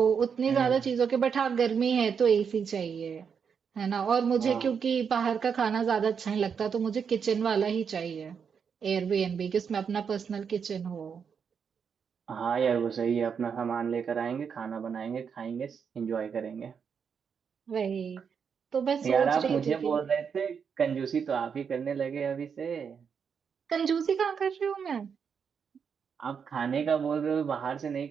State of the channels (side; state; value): left; quieter; 6.7 dB